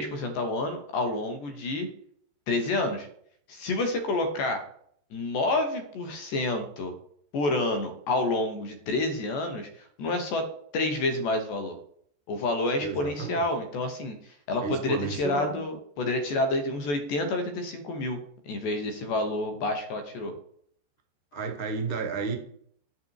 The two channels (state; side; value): late; right; 14 ms